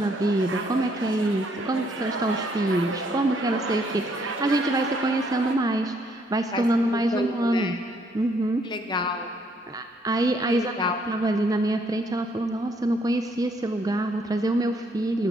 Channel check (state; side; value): normal; both; correlation 0.69